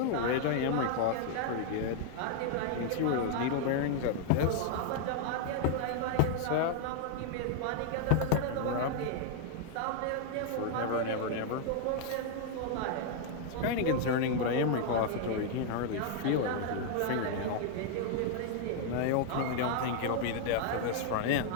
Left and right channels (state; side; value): different; both; correlation 0.00